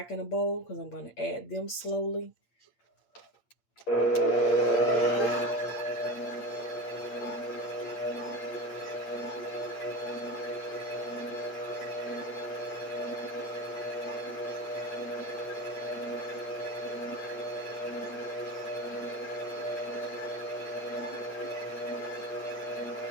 in a bowl because I'm going to add them slowly.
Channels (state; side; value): late; right; 8.6 ms